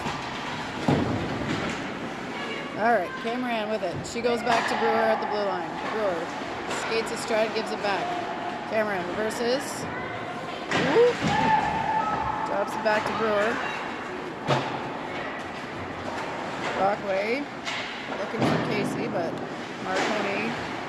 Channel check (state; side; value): identical; both; correlation 1.00